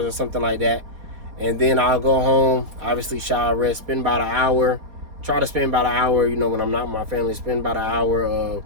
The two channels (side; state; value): left; late; 4.2 ms